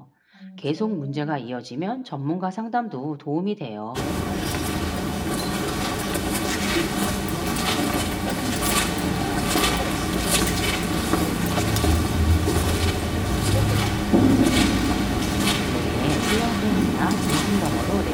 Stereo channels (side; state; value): both; identical; correlation 1.00